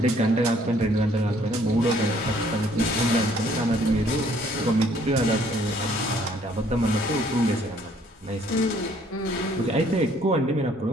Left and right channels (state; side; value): normal; both; correlation 0.62